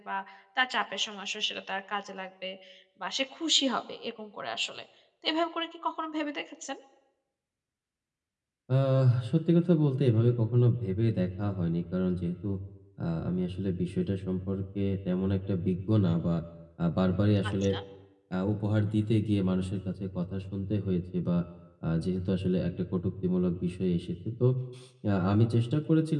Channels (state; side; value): identical; both; correlation 1.00